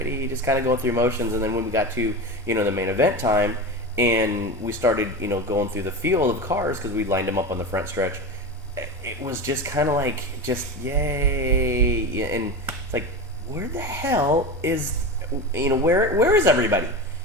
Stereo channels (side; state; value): both; normal; correlation 0.25